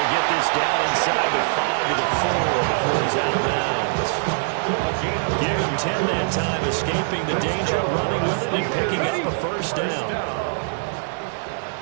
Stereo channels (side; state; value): left; silent; digital silence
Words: get this down inside the 5 to the 4 before he's out of bounds. Give him 10 that time, escaping the danger, running with it, and picking up a first down.